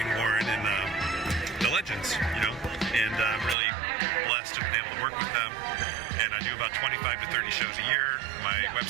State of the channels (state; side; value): drops out; left; at 3.6 s